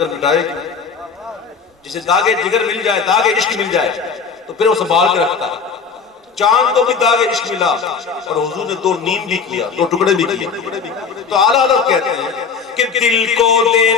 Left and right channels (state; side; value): quieter; right; 5.6 dB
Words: مٹائے گی، جسے داغ جگر مل جائے، داغ عشق مل جائے تو پھر وہ سنبھال کے رکھتا ہے۔ چاند کو بھی داغ عشق ملا اور حضور نے دو نیم بھی کیا، دو ٹکڑے بھی کیا، تو اعلیٰ حضرت کہتے ہیں کہ دل کو دے